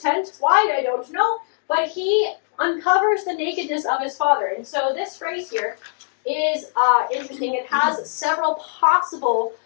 Why, I don't know. But he uncovers the nakedness of his father. And so this phrase here is interesting. It has several possible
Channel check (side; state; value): right; silent; digital silence